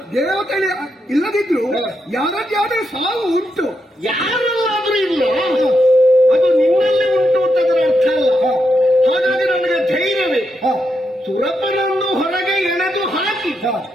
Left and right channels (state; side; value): normal; both; correlation 0.83